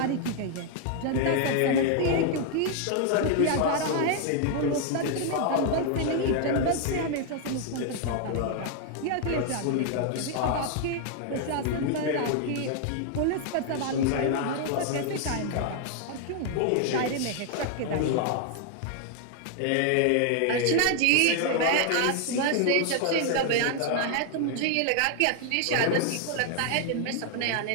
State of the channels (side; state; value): both; different; correlation 0.00